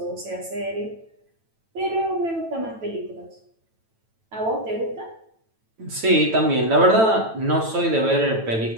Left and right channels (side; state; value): left; late; 9.0 ms